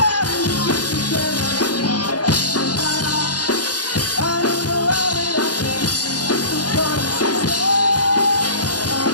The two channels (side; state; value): right; late; 0.69 ms